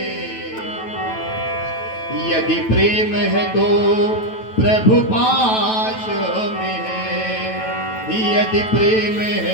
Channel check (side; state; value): right; late; 9.1 ms